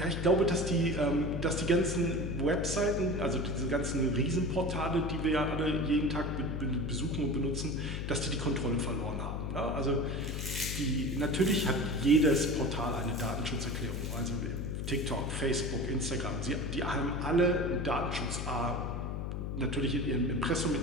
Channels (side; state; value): left; noise; hum, 3 dB below the sound